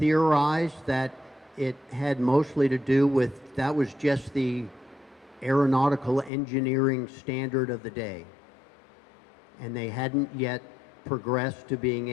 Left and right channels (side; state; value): right; drops out; at 6.3 s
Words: that it had mostly to do with, that was just the aeronautical engineering standard of the day. And they hadn't yet progressed to being